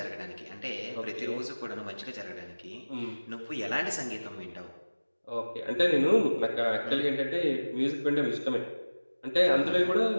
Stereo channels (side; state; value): both; inverted; correlation -1.00